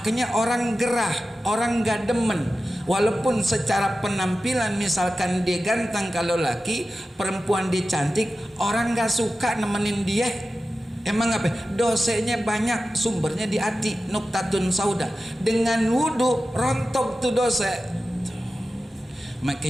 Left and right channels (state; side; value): normal; both; correlation 0.94